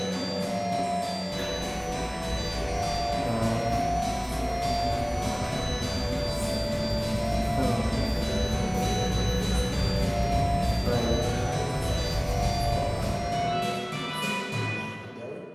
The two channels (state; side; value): identical; both; correlation 1.00